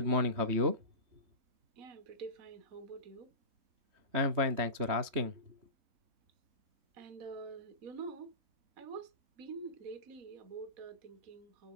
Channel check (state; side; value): late; left; 3.2 ms